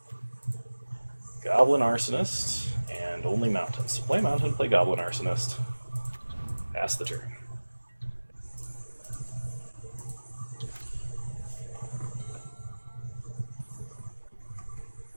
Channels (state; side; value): inverted; both; correlation -1.00